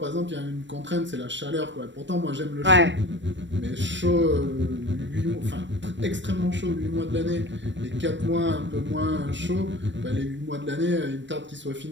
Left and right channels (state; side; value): late; left; 0.53 ms